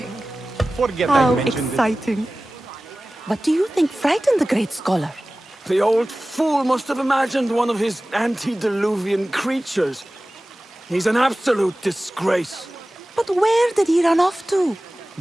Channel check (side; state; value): both; normal; correlation 0.97